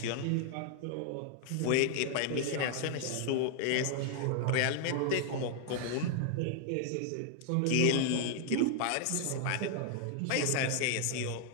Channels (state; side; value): different; both; correlation 0.00